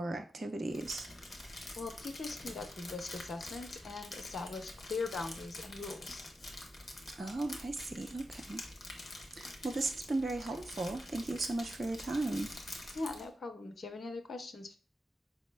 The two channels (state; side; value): normal; both; correlation 0.88